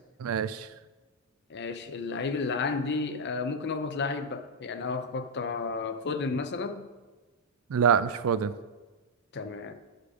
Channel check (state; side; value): normal; both; correlation -0.04